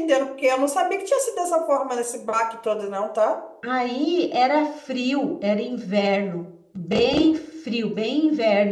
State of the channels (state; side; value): identical; both; correlation 1.00